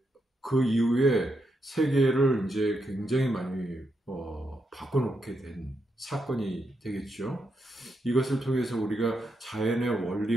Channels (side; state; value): both; normal; correlation 0.82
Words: 그 이후에 세계를 이제 굉장히 많이 바꿔놓게 된 사건이 되겠죠. 이것을 통해서 우리가 자연의